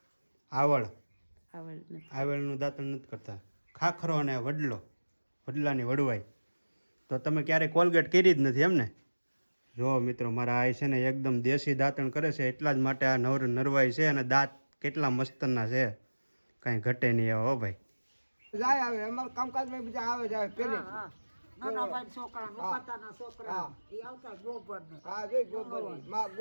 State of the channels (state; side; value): inverted; both; correlation -1.00